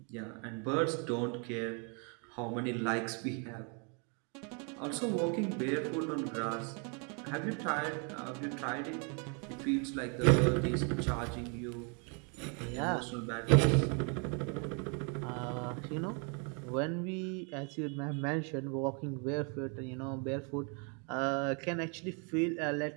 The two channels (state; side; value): quieter; left; 36.9 dB